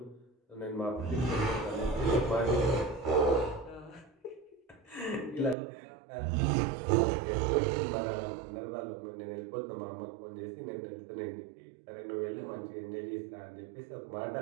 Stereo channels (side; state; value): left; drops out; at 5.6 s